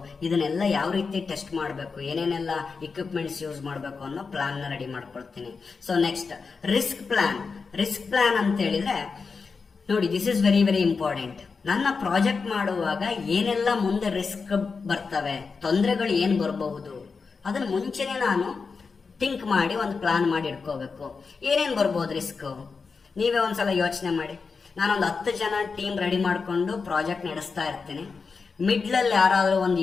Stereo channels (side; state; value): right; quieter; 4.9 dB